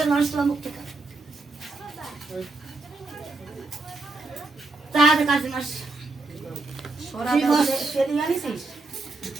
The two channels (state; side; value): quieter; left; 3.4 dB